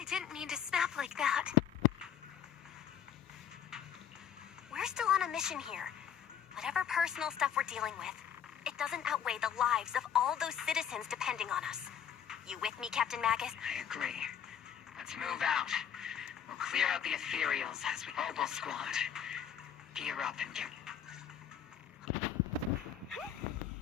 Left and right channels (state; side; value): quieter; right; 8.8 dB